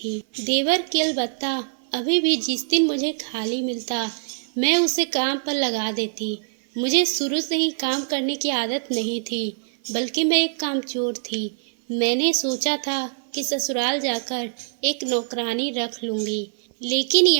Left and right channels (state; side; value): silent; left; 58 dB below the other